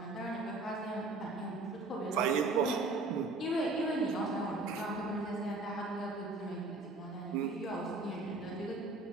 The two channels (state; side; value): quieter; left; 3.2 dB